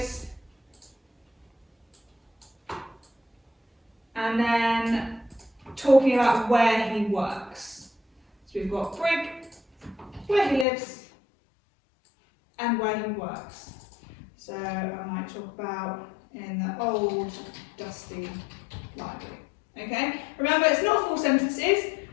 and then talking about where he works. So we've got Brig, where he lives, and where he works. So I might talk about in the old, dusty library. Okay? Remember, it's not full sentences,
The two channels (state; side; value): drops out; right; at 10.7 s